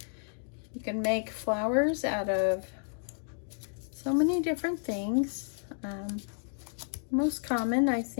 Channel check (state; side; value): silent; right; digital silence